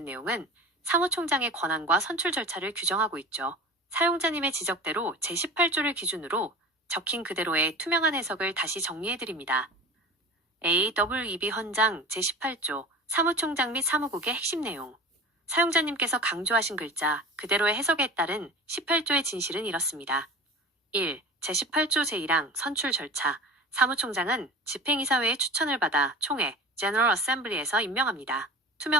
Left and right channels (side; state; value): both; normal; correlation 0.35